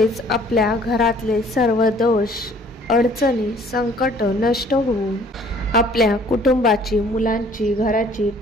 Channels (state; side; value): normal; both; correlation 0.56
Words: आपल्या घरातले सर्व दोष, अडचणी, संकट नष्ट होऊन आपल्या कुटुंबाची, मुलांची, घराची